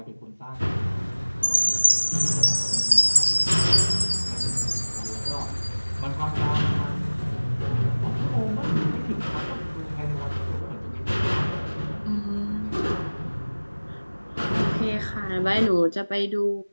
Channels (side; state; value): both; inverted; correlation -1.00